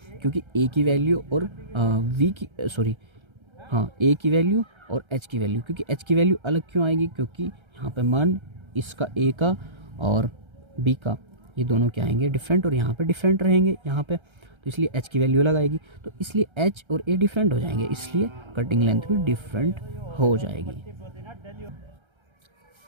क्योंकि ए की वैल्यू और वी की सॉरी हाँ ए की वैल्यू और एच की वैल्यू, क्योंकि एच की वैल्यू अलग क्यों आएगी, क्योंकि यहाँ पे मान इसका ए का और बी का ये दोनों क्या आएंगे, डिफरेंट, और यहाँ पे डिफरेंट रहेंगे यहाँ पे, तो इसलिए एच की वैल्यू अलग आएगी, तो इसलिए एच और ए डिफरेंट हो जाएंगे, इसलिए कटिंग लेंथ भी डिफरेंट हो जाएगी।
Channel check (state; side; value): late; left; 1.3 ms